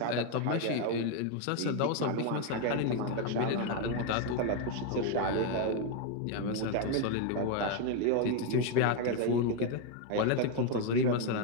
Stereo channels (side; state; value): both; different; correlation 0.01